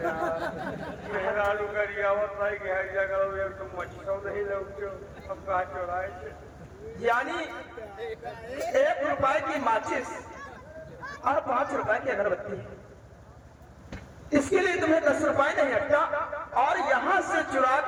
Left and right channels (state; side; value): identical; both; correlation 1.00